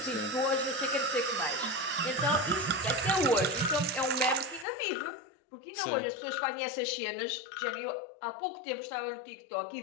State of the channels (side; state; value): right; drops out; at 4.7 s